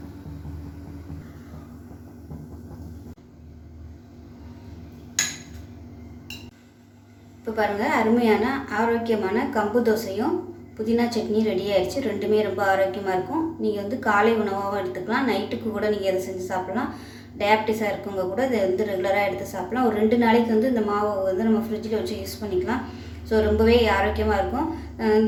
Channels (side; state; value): both; identical; correlation 1.00